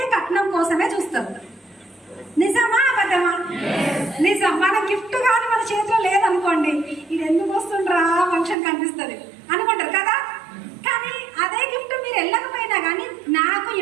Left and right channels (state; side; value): drops out; left; at 8.6 s